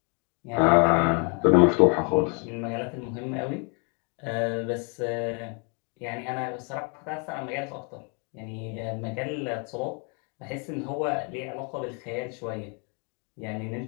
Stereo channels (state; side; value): quieter; right; 36.1 dB